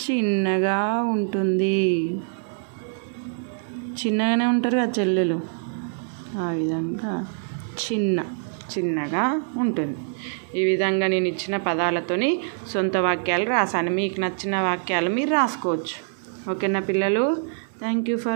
చిన్నగా ఉంటుంది. చిన్నగానే ఉంటారు కదా చెల్లెలు, ఆ విధంగా చిన్న. చిన్నగా ఉంటుంది. ఈ విధంగా నేను ఇచ్చిన పదాలతోని సొంత వాక్యాలు రాశాను. మీకు నచ్చిన వాక్యాలు మీరు రాసుకోవచ్చు. ఓకేనా పిల్లలు? Thank you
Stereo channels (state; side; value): silent; left; digital silence